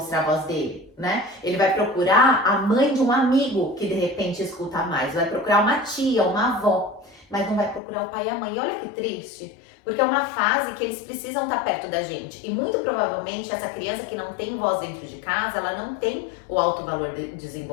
a voz dele, né? Ele vai procurar a mãe de um amigo que de repente escuta mais, vai procurar uma tia, uma avó, mas não vai procurar o pai e a mãe. E olha que triste, porque é uma fase que eles precisam estar perto da gente. E muito provavelmente essa criança que não tem voz dentro de casa, ela não tem o alto valor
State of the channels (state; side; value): drops out; right; at 7.8 s